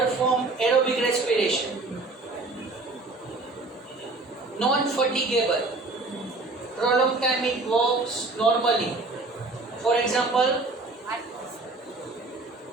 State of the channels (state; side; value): quieter; left; 3.3 dB